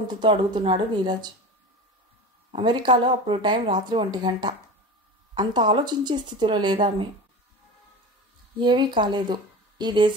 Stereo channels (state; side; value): normal; both; correlation 0.31